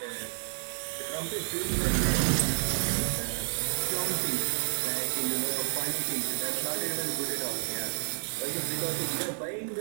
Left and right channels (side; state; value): left; silent; digital silence